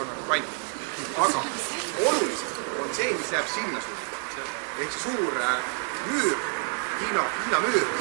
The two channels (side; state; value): left; quieter; 36.0 dB